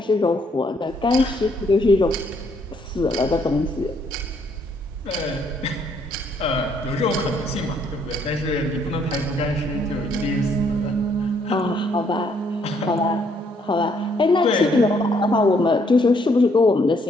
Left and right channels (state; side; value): normal; both; correlation 0.69